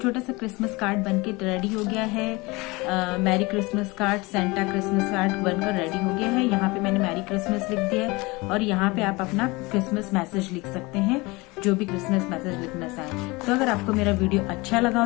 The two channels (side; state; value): right; quieter; 24.1 dB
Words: सा क्रिसमस कार्ड बनके रेडी हो गया है। Merry Christmas card, Santa Christmas card बनकर रेडी हो गया है। यहाँ पे मैंने मैरी क्रिसमस लिख दिया है और यहाँ पे आप अपना क्रिसमस मैसेज लिख सकते हैं, जो भी क्रिसमस मैसेज लिखना चाहें। तो अगर आपको मेरा वीडियो अच्छा लगा